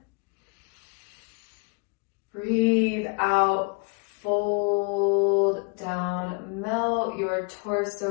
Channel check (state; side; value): quieter; right; 33.9 dB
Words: Breathe out. Fold down melt your